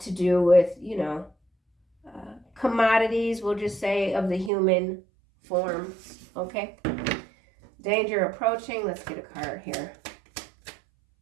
do with, commodities, we'll just say, of the human form. Okay? Danger approaching. Let's get a card here.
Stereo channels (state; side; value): drops out; left; at 4.5 s